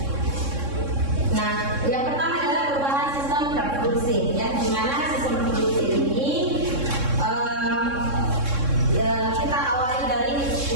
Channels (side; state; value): left; late; 3.6 ms